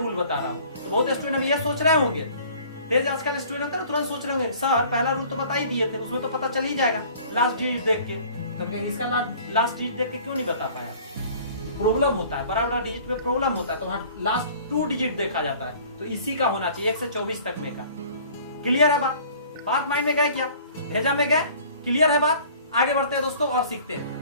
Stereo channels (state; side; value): inverted; both; correlation -0.50